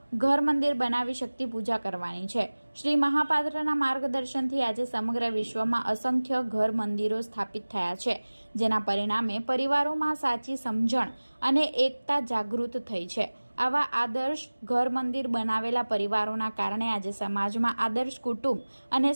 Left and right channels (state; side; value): inverted; both; correlation -1.00